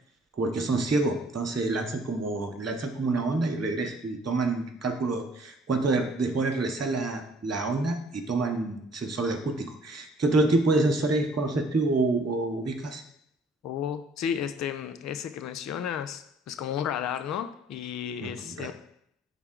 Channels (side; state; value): both; normal; correlation 0.58